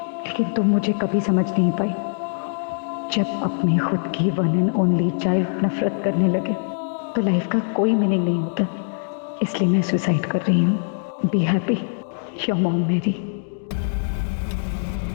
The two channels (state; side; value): silent; right; digital silence